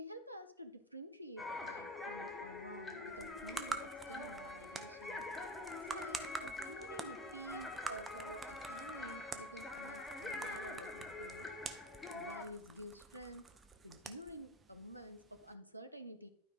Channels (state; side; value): normal; both; correlation 0.32